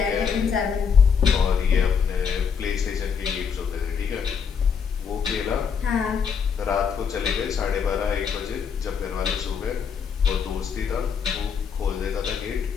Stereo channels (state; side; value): quieter; right; 6.6 dB